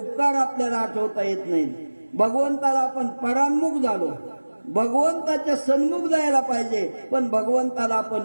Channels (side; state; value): both; inverted; correlation -1.00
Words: आपल्याला आठवता येत नाहीत. भगवंताला आपण परान्मुख झालो, भगवंताच्या सन्मुख जायला पाहिजे पण भगवंताला